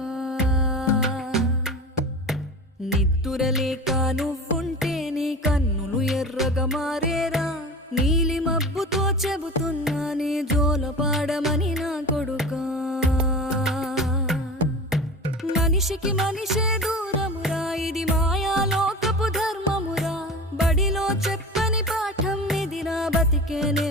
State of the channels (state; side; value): normal; both; correlation 0.33